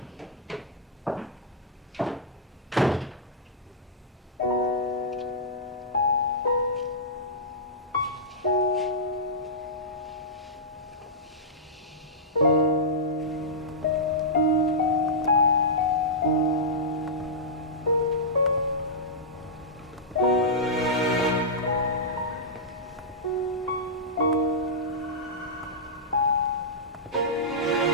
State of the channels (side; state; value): both; normal; correlation -0.14